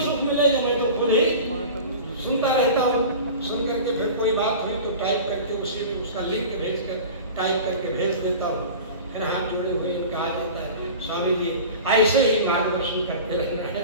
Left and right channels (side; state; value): both; inverted; correlation -0.36